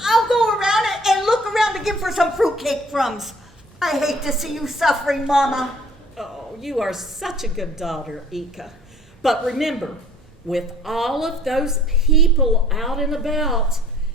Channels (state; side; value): normal; both; correlation 0.55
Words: I'll go around and look around again for some fruitcake crumbs. I hate to see you suffering, Mama. Oh, you are such a good daughter, Ika. But remember, with all of those people out and about,